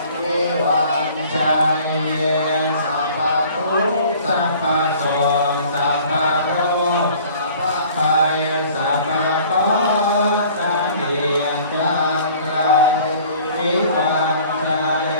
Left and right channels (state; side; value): inverted; both; correlation -0.51